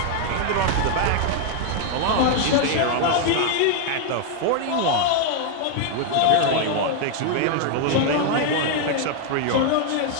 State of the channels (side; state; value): both; different; correlation 0.00